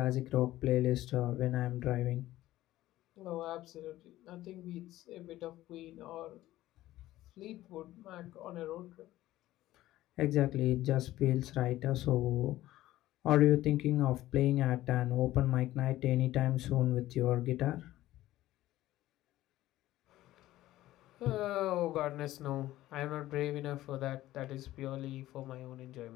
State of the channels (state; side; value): quieter; right; 15.4 dB